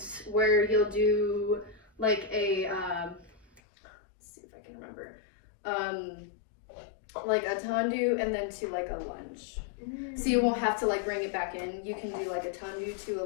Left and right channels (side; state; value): right; drops out; at 3.6 s